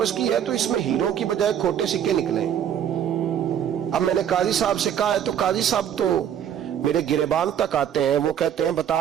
کی ہے تو اس میں ہیروں کی بجائے کھوٹے سکے نکلے. اب میں نے قاضی صاحب سے کہا ہے تو قاضی صاحب تو میرے گریبان تک آتے ہیں، وہ کہتے ہیں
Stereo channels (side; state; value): left; quieter; 9.4 dB